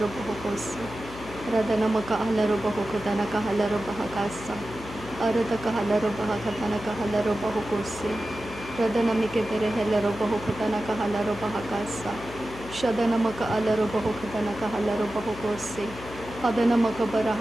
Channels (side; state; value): left; noise; hum, 14 dB below the sound